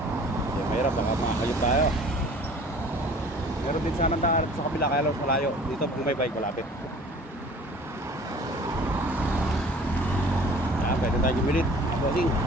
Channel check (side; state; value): both; normal; correlation 0.48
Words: Kasi mahirap, baka makakayot tayo. Meron din sana daan sa kabila, kaya lang malayo. Dito kung may bike malapit. Yan, pwede tayo gumilit mga bossing.